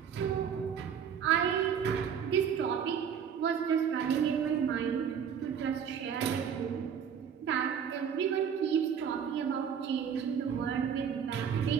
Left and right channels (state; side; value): quieter; left; 7.7 dB